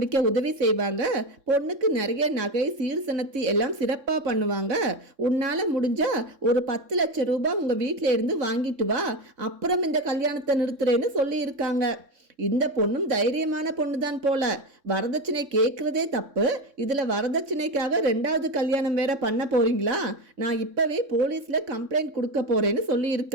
உதவி செய்வாங்க, பொண்ணுக்கு நிறைய நகை சீர்சனத்தி எல்லாம் சிறப்பாக பண்ணுவாங்க, உன்னால் முடிஞ்சா ஒரு 10 லட்சம் ரூபாய் உங்கள் வீட்டில் இருந்து வாங்கிட்டு வா, அப்புறம் இந்த கல்யாணத்தை நிறுத்துறேன்னு சொல்லியிருக்காங்க. இந்த பொண்ணும் தைரியமான பொண்ணு தான் போல. வரதட்சணை கேட்குறதே தப்பு, இதில் வரதட்சணைக்காக 2வது கல்யாணம் வேற பண்ண போறீங்களா? நான் இப்பவே போலீஸில் கம்ப்ளைண்ட் கொடுக்க போறேன்னு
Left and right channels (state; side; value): late; left; 3.6 ms